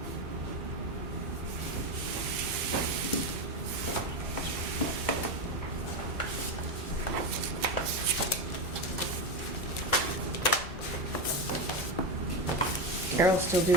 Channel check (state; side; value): normal; both; correlation 0.14